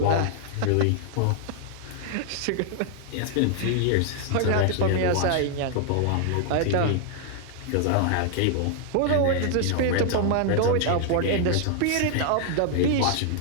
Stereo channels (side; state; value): both; different; correlation 0.00